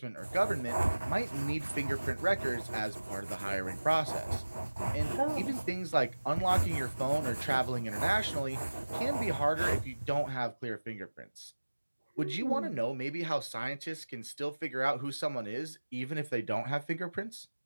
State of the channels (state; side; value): inverted; both; correlation -1.00